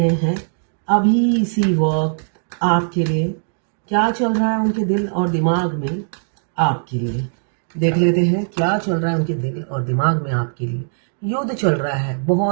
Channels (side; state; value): left; silent; digital silence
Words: हैं अभी इसी वक्त आपके लिए, क्या चल रहा है उनके दिल और दिमाग में आपके लिए। देख लेते हैं क्या चल रहा है उनके दिल और दिमाग में आपके लिए। युद्ध चल रहा है,